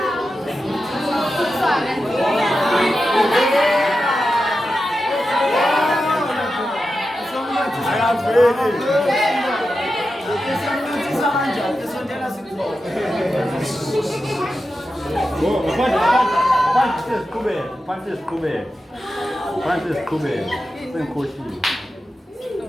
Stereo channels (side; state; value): both; normal; correlation 0.91